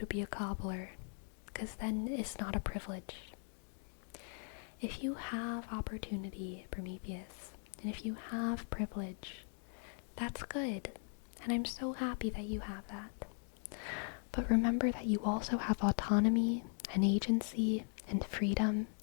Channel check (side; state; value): right; silent; 51 dB below the other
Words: be a cobbler, because then it's not a privilege. If you have opportunity, Prometheus, and if you have privilege, that's good, and I'm so happy that you have that. But remember that you also have autonomy and agency and freedom,